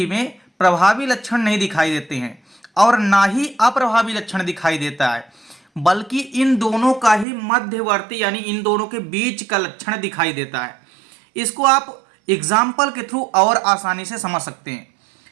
में प्रभावी लक्षण नहीं दिखाई देते हैं और ना ही अप्रभावी लक्षण दिखाई देता है, बल्कि इन दोनों का ही मध्यवर्ती यानी इन दोनों के बीच का लक्षण दिखाई देता है। इसको आप एग्जाम्पल के थ्रू और आसानी से समझ सकते हैं।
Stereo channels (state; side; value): drops out; left; at 7.2 s